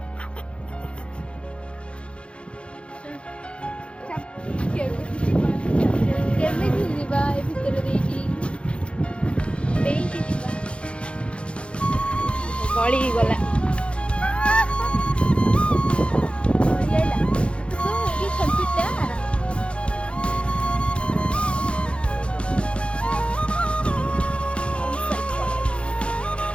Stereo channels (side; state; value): right; late; 0.058 ms